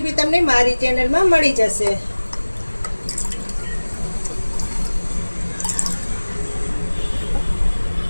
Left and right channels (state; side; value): inverted; both; correlation -1.00